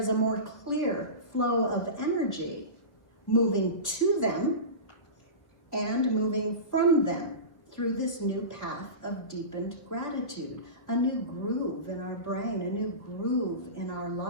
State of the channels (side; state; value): right; late; 1.4 ms